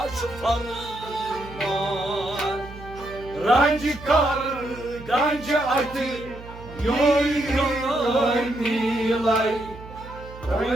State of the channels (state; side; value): noise; right; hum, 16 dB below the sound